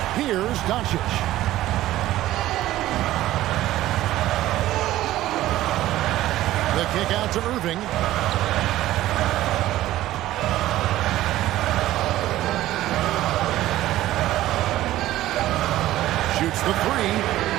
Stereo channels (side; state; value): left; quieter; 14.9 dB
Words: Here's Doncic. The kick out to Irving. Shoots the 3.